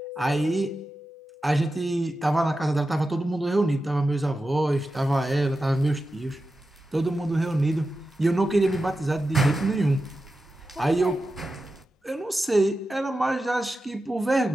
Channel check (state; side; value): normal; both; correlation 0.92